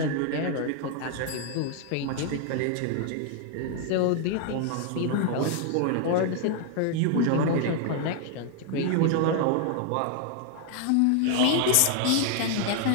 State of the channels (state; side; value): different; both; correlation 0.00